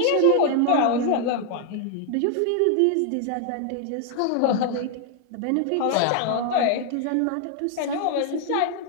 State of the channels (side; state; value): both; different; correlation 0.00